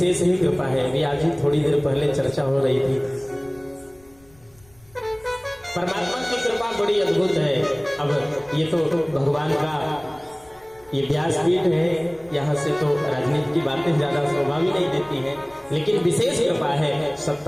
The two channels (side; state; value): left; noise; rumble, 30 dB below the sound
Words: ही कृपा है। अभी आज ही थोड़ी देर पहले चर्चा हो रही थी, परमात्मा की कृपा बड़ी अद्भुत है। अब ये तो भगवान का ये व्यासपीठ है, यहाँ से तो राजनीति की बातें ज्यादा शोभा भी नहीं देती हैं, लेकिन विशेष कृपा है।